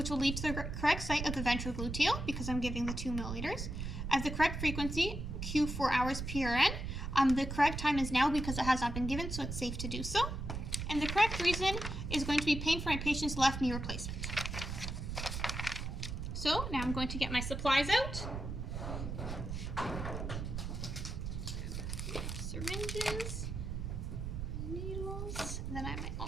will lead to the correct site of the ventrogluteal because I'm giving the 2 milliliters. I have the correct frequency, Q4 hours PRN. The correct time is now because it has not been given, so it's safe to do so. And the correct reason is going to be pain for my patient's left knee replacement. So now I'm going to get my supplies out. Syringes, needles, and then I have my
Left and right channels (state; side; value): noise; right; rumble, 5 dB below the sound